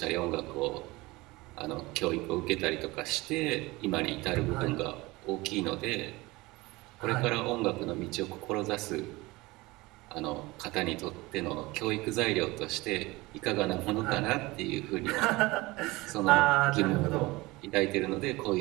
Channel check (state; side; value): quieter; left; 21.7 dB